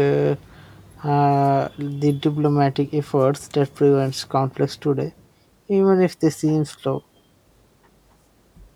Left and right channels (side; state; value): both; identical; correlation 1.00